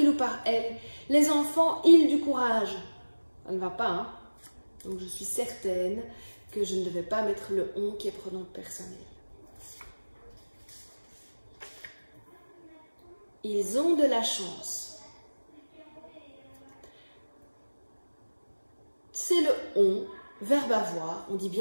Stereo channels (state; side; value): inverted; both; correlation -1.00